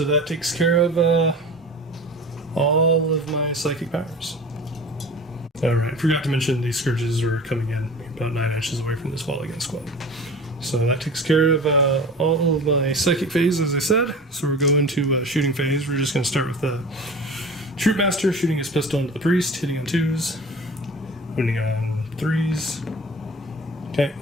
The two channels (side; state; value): both; normal; correlation 0.38